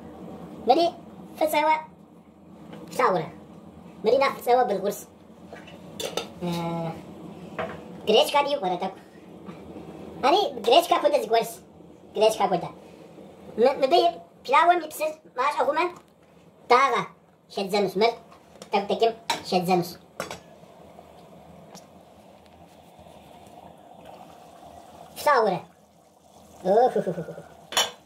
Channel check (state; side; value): identical; both; correlation 1.00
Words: مري فسوا ساورة مري ناخد سوا بالغرس جريش كادي يقرأ تاك أني جريش كابودا زغرس جريش كابودا مبي بلاوة ميبسر ماش أغوما تاغا شدزنوس مر تكتكم شدزنوس ساورة